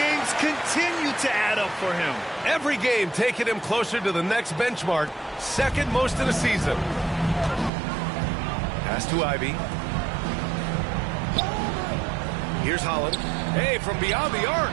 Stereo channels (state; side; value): drops out; left; at 7.7 s